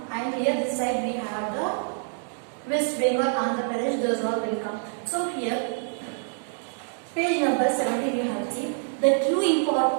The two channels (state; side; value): silent; left; 61 dB below the other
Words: and here this side we have the West Bengal, Andhra Pradesh, those all will come. So here page number 70 we have seen the